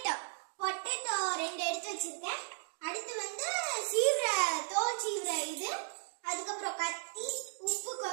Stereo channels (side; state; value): left; silent; digital silence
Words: பொட்டேட்டோ 2 எடுத்து வச்சிருக்கேன். அடுத்து வந்து தோல் சீவுற இது. அதுக்கப்புறம் கத்தி, உப்பு